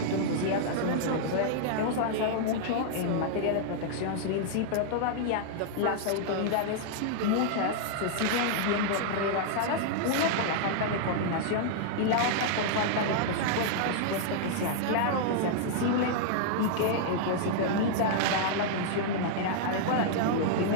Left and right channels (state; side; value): different; both; correlation -0.01